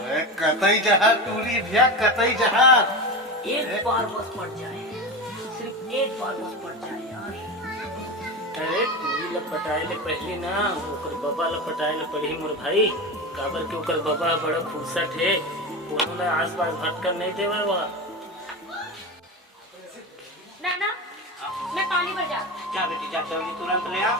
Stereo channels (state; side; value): normal; both; correlation 0.23